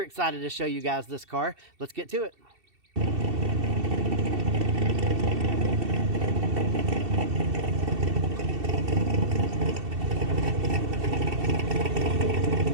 to show you guys this car. Let's get to it.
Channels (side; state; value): left; late; 2.7 ms